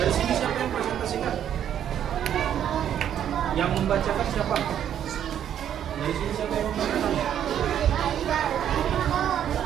Dari sini siapa yang presentasikan? Yang membacakan siapa? Dari sini siapa yang membacakan?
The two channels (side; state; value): left; quieter; 9.9 dB